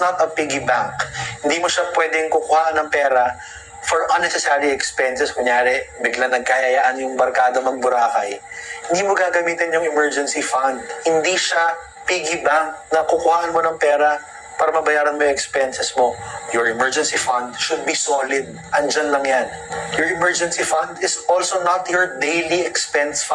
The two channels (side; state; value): both; identical; correlation 1.00